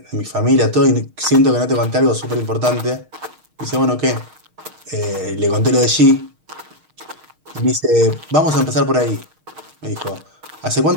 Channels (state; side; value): late; left; 6.5 ms